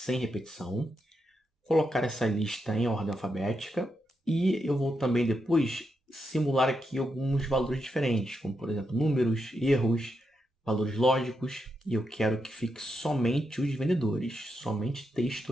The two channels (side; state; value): both; normal; correlation 0.83